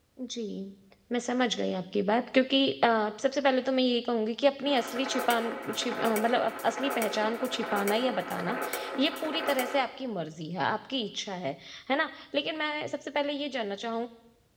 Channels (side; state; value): both; identical; correlation 1.00